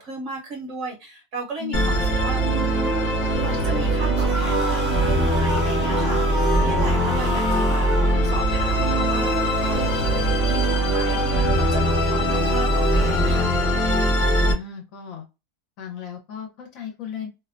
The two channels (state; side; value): normal; both; correlation 0.53